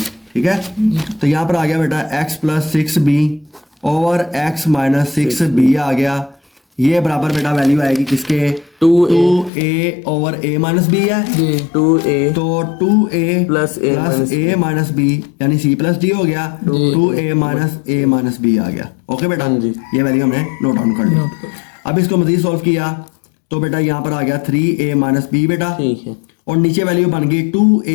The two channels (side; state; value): right; drops out; at 9.5 s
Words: ठीक है। तो यहाँ पर आ गया बेटा x plus 6b over x minus 6b आ गया। ये बराबर बेटा वैल्यू आएगी किसके, 2a over a minus b है, जी 2a तो 2a plus a plus a minus b यानी c प्लस d हो गया, 2a minus a minus b आ गया। ओके बेटा, हाँ जी। ये वैल्यू हमने नोट डाउन कर ली। नोट कर। अब इसको मजीद सॉल्व किया तो बेटा यहाँ पर आ गया 3a माइनस b बेटा, ठीक है। और नीचे वैल्यू बन गई